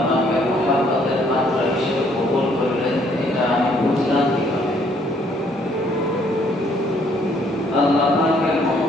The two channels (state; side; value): normal; both; correlation 0.65